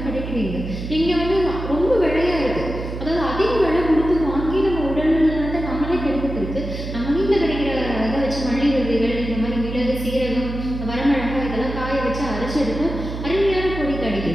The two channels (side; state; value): right; noise; hum, 7 dB below the sound